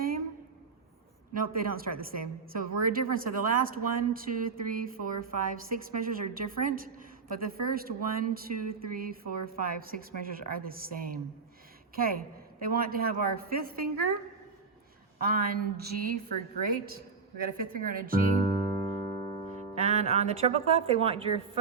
Nope, they don't start the same. So we're different. So the last 1, 2, 3, 4, 5, 6 measures are different, but the first 1, 2, 3, 4, 5, 6 measures are the same. Okay, they want to have our 5th finger on G for great. We got a 5th finger on a G. And on the treble clef, they want your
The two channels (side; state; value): left; quieter; 5.0 dB